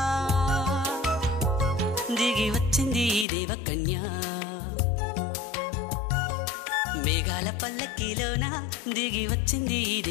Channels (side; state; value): right; drops out; at 3.2 s